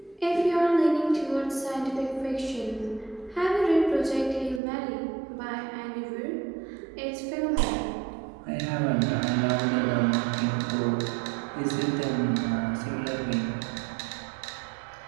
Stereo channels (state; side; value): drops out; left; at 4.6 s